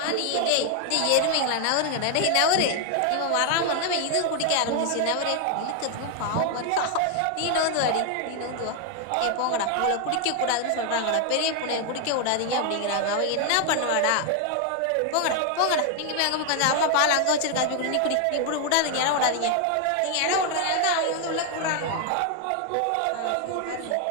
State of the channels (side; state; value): both; different; correlation 0.00